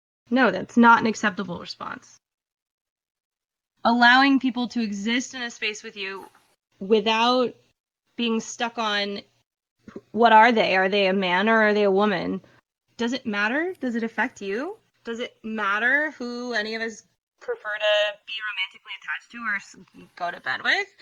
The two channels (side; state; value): both; identical; correlation 1.00